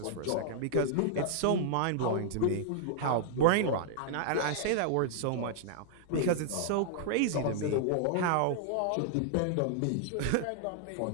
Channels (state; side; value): different; both; correlation -0.01